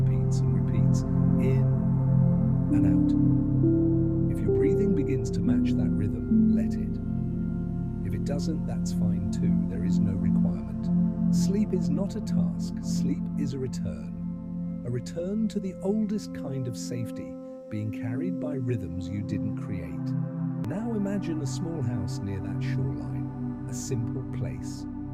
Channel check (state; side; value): identical; both; correlation 1.00